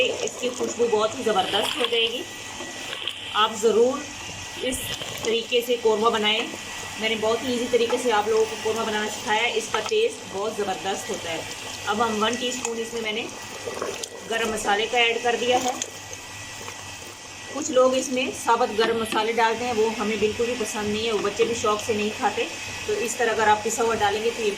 इसकी खुशबू बहुत ही ज़बरदस्त हो जाएगी। आप ज़रूर इस तरीके से कौरमा बनाएं। मैंने बहुत ही इजी तरीके से आप लोगों को कौरमा बनाना सिखाया है। इसका टेस्ट बहुत ज़बरदस्त होता है। अब हम 1 टीस्पून इसमें मैंने गरम मसाले का ऐड कर दिया है। कुछ लोग इसमें साबुत गरम मसाले डालते हैं, वो हमें बिल्कुल भी पसंद नहीं है, वो बच्चे भी शौक से नहीं खाते। तो इस तरह अगर आप पिसा हुआ डालेंगे तो ये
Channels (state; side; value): identical; both; correlation 1.00